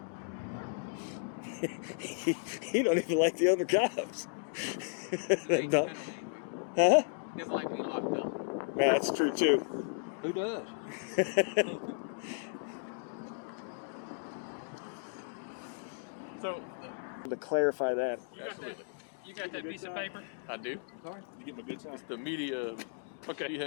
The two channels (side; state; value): right; silent; digital silence